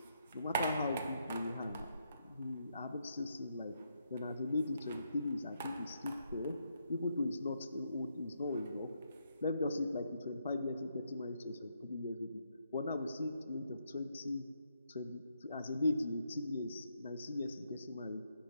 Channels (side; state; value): both; inverted; correlation -0.77